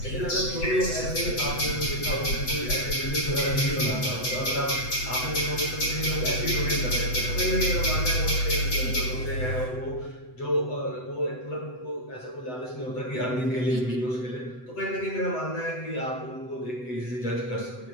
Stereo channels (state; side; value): late; right; 8.0 ms